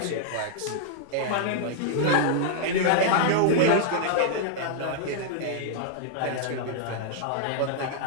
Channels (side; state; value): both; different; correlation -0.01